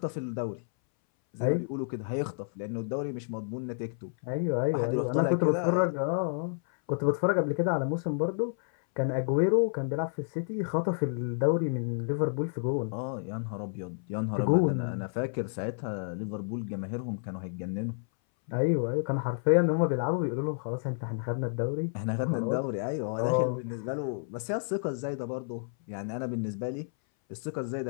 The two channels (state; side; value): silent; right; 58 dB below the other